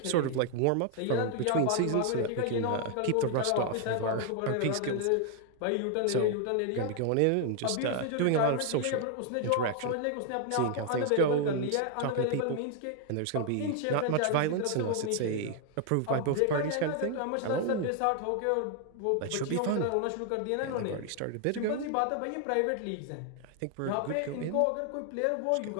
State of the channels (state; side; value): different; both; correlation 0.00